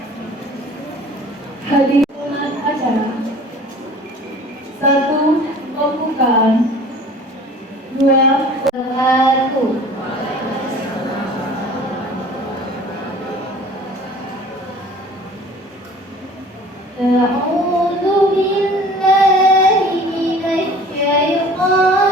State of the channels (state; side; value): normal; both; correlation 0.47